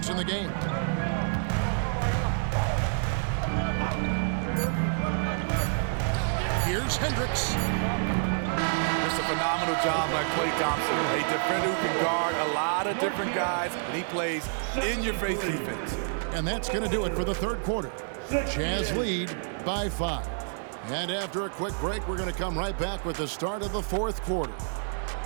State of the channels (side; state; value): left; silent; digital silence